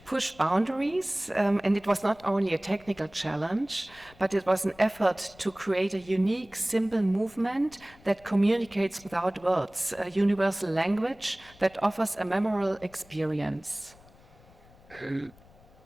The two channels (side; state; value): left; noise; rumble, 26 dB below the sound